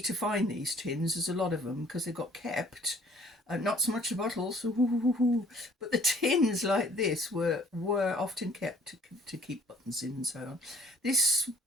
to find these tins. There's a lot of them because they got kept. Not so much the bottles, but the tins like this were often kept to keep buttons in and so on. This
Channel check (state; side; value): normal; both; correlation 0.56